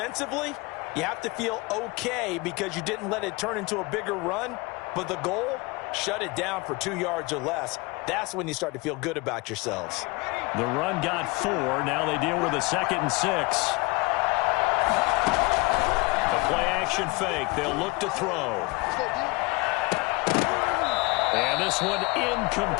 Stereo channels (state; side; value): quieter; right; 25.6 dB